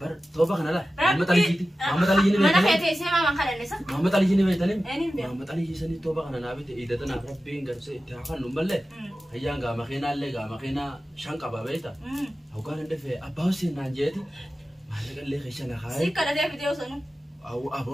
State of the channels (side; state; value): both; normal; correlation 0.94